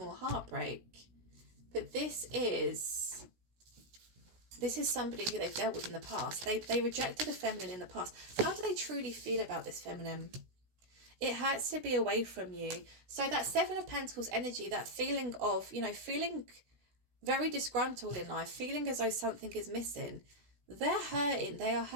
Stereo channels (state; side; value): late; left; 16 ms